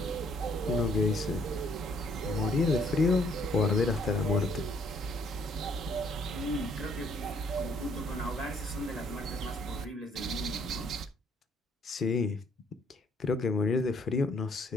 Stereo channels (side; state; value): both; normal; correlation 0.65